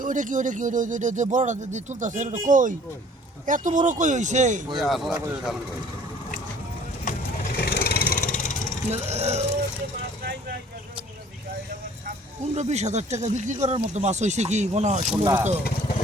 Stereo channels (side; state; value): both; normal; correlation 0.53